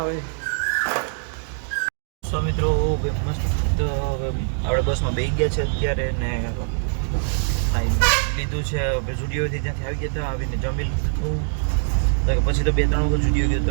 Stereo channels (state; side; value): silent; left; digital silence